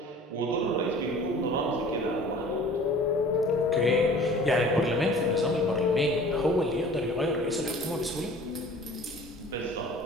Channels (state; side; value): normal; both; correlation 0.46